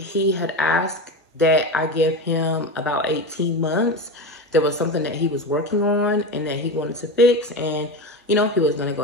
had asked that I give him about 18 months. There was something that he was working on and that he wanted to fix. And, you know, he was going to go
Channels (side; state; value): both; normal; correlation 0.22